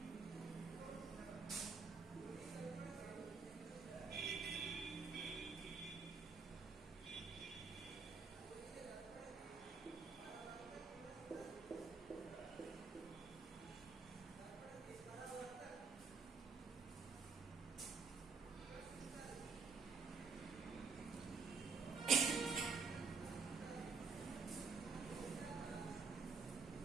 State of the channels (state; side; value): quieter; left; 5.0 dB